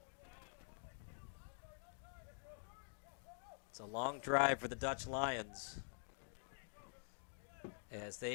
It's a long drive for the Dutch Lions, as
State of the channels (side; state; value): right; silent; digital silence